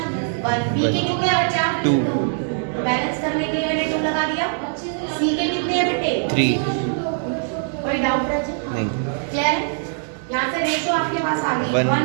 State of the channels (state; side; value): silent; left; 64 dB below the other